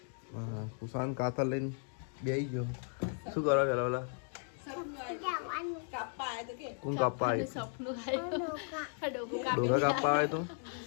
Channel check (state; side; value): silent; right; 54 dB below the other